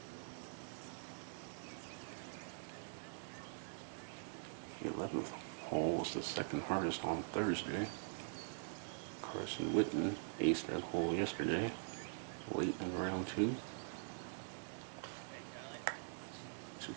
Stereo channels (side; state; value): left; silent; digital silence